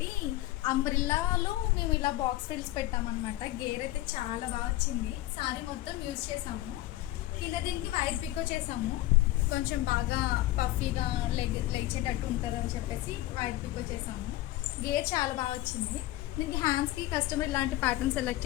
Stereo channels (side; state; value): right; quieter; 16.6 dB